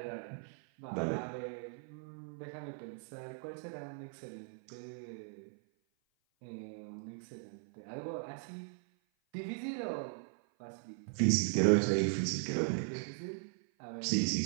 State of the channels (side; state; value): left; silent; 52 dB below the other